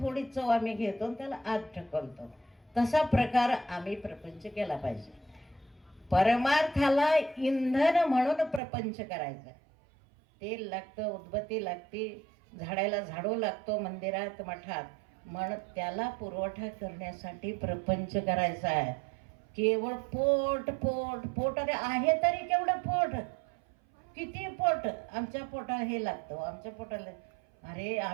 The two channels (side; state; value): left; drops out; at 8.6 s